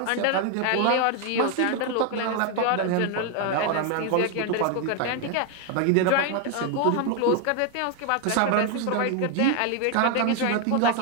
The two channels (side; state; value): both; different; correlation 0.01